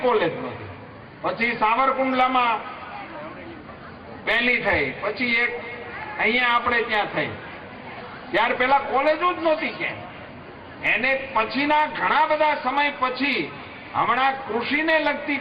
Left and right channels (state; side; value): identical; both; correlation 1.00